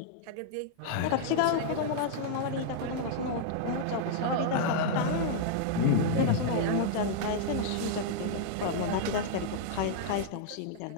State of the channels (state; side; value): different; both; correlation -0.01